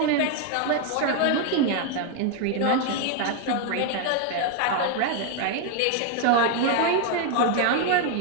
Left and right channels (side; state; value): both; different; correlation 0.01